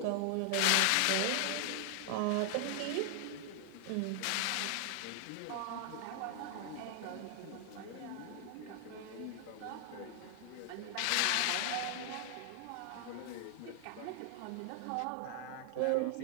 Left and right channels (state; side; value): different; both; correlation 0.00